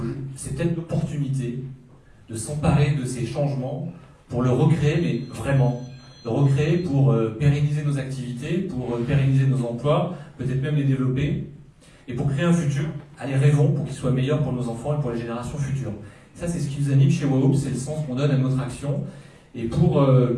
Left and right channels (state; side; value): identical; both; correlation 1.00